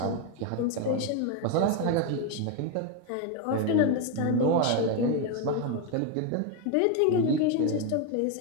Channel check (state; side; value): different; both; correlation 0.02